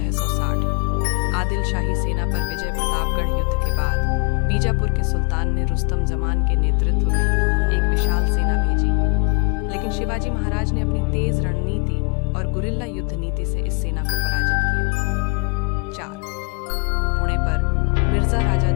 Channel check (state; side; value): quieter; right; 32.2 dB